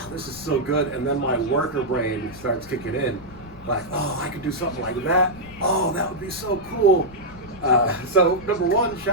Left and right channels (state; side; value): noise; left; rumble, 19 dB below the sound